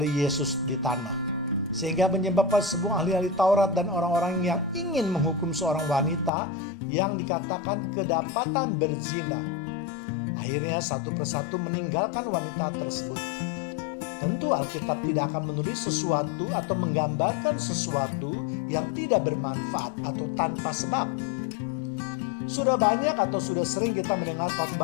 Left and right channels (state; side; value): drops out; right; at 6.3 s